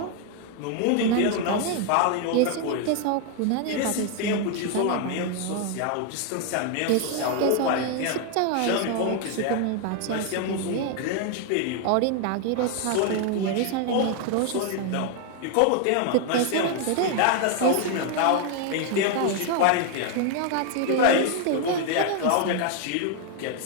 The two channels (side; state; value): both; different; correlation 0.00